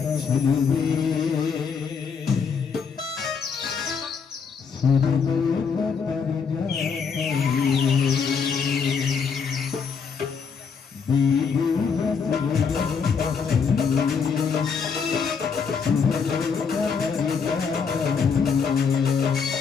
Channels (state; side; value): quieter; right; 5.9 dB